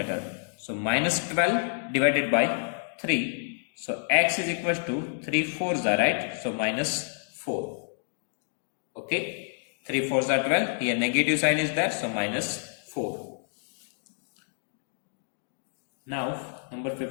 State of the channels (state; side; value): silent; right; digital silence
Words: So minus 12 divided by 3. So x is equals to 3 4s are right. So minus 4. Okay, 3 4s are 12. Here negative sign is there. So minus 4. Now number